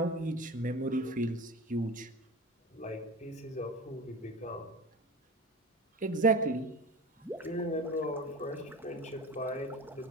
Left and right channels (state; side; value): normal; both; correlation 0.32